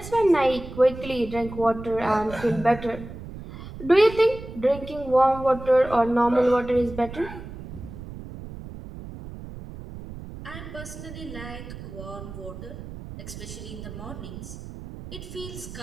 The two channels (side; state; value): right; noise; rumble, 12 dB below the sound